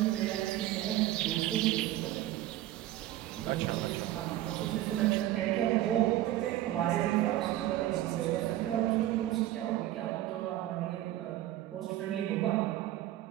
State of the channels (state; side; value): quieter; left; 14.4 dB